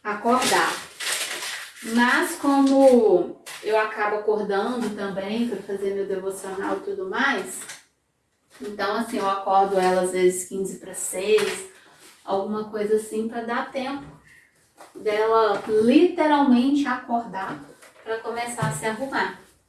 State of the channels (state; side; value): identical; both; correlation 1.00